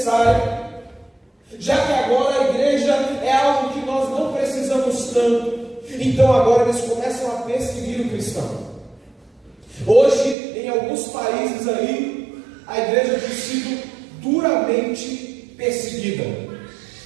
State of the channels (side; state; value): left; drops out; at 10.4 s